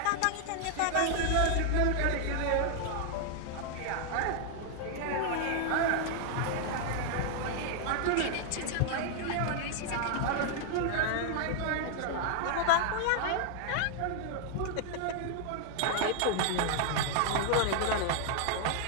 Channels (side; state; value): both; different; correlation 0.00